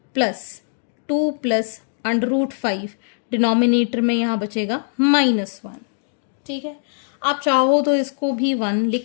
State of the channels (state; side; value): silent; right; digital silence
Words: प्लस 2 प्लस √5, डिनोमिनेटर में यहाँ बचेगा -1. ठीक है, आप चाहो तो इसको भी 1